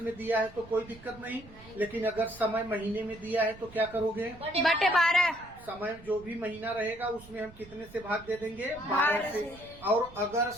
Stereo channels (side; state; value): right; noise; rumble, 20 dB below the sound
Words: दिया है तो कोई दिक्कत नहीं, लेकिन अगर समय महीने में दिया है तो क्या करोगे? बटे 12। समय जो भी महीना रहेगा उसमें हम कितने से भाग दे देंगे? 12 से। और अगर